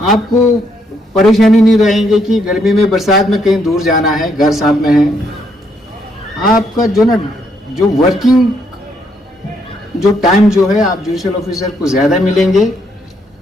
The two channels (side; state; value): both; normal; correlation 0.73